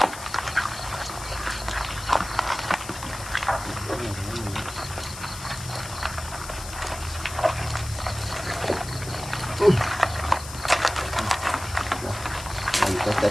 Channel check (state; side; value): noise; left; hiss, 12 dB below the sound